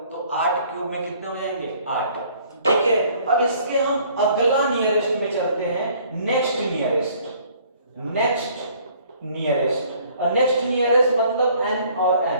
तो 8 क्यूब में कितने हो जाएंगे, 8। ठीक है, अब इसके हम अगला नियरेस्ट में चलते हैं, नेक्स्ट नियरेस्ट। और नेक्स्ट नियरेस्ट मतलब n और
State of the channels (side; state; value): both; inverted; correlation -0.58